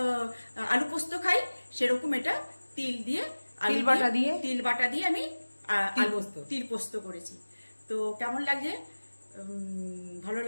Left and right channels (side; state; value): both; inverted; correlation -1.00